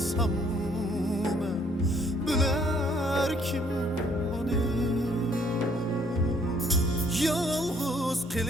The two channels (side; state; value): both; normal; correlation 0.64